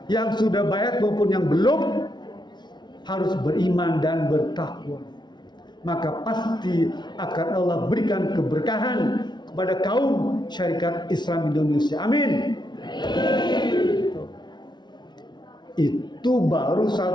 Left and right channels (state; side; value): late; right; 0.21 ms